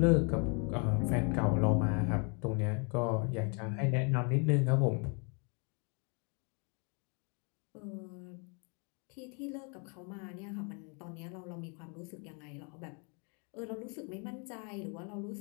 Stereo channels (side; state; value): right; quieter; 36.2 dB